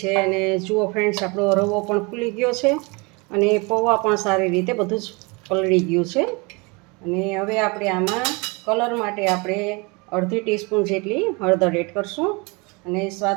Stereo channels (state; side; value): quieter; left; 28.2 dB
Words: અને જુઓ ફ્રેન્ડ્સ, આપણો રવો પણ ફૂલી ગયો છે અને પૌવા પણ સારી રીતે બધું જ પલળી ગયું છે. અને હવે આપણે આમાં કલર માટે આપણે અડધી ટીસ્પૂન જેટલી હળદર એડ કરશું અને